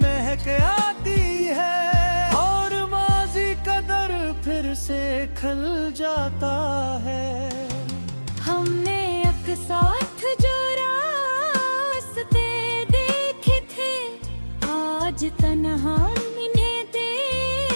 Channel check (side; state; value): both; inverted; correlation -1.00